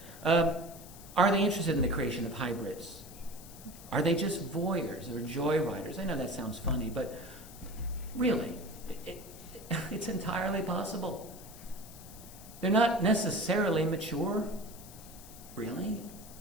that. Are they interested in the creation of hybrids? Are they just voyeurs or joyriders? I know that sounds funny, but really, it's entirely possible. They're not necessarily mature. Really?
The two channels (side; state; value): left; noise; hiss, 17 dB below the sound